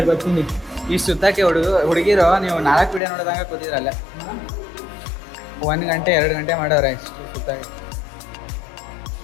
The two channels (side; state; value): right; drops out; at 3.0 s